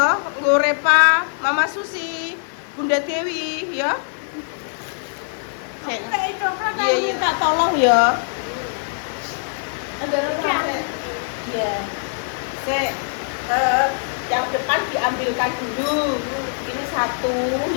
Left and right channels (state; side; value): silent; right; 64 dB below the other